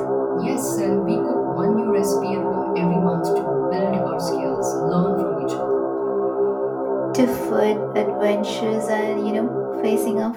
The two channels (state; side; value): identical; both; correlation 1.00